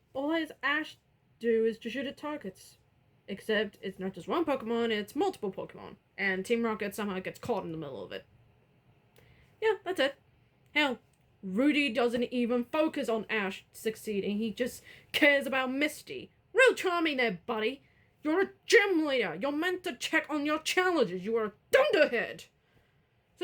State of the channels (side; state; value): both; identical; correlation 1.00